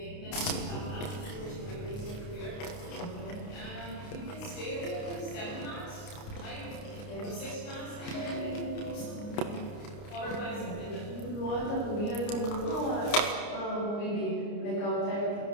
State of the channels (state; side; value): late; right; 29 ms